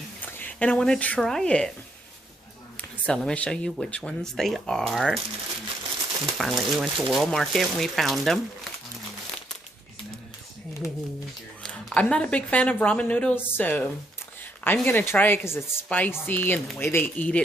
and I want to try it. So let me show you which ones they are. And finally we went to World Market and we found them. I'm not a big fan of ramen noodles, so I'm going to try it because it's spicy and the way they eat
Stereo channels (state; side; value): normal; both; correlation 0.73